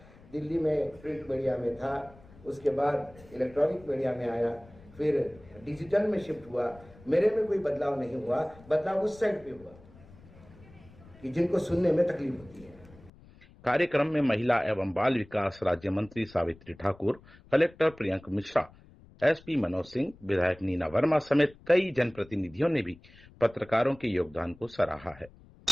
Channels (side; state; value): left; noise; rumble, 24 dB below the sound